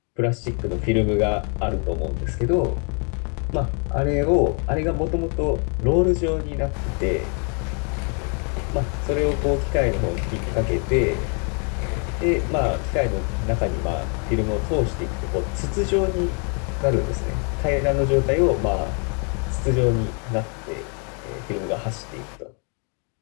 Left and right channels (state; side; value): quieter; right; 38.5 dB